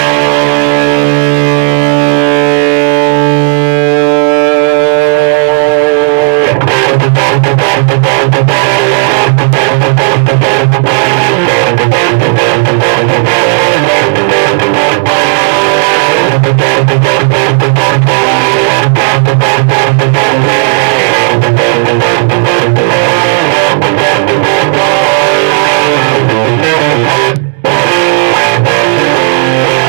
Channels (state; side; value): silent; left; digital silence